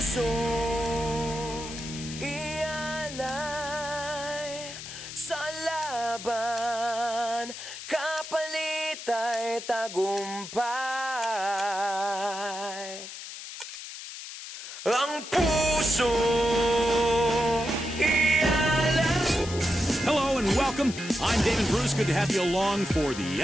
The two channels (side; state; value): left; noise; hiss, 11 dB below the sound